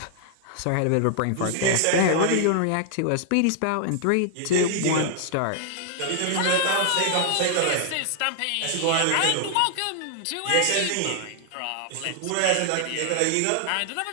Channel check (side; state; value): both; different; correlation 0.00